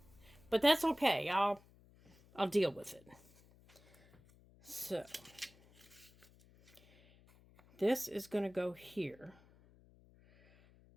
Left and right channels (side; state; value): left; noise; hum, 27 dB below the sound